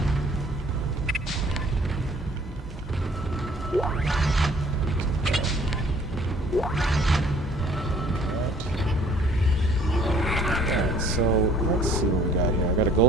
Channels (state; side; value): normal; both; correlation 0.57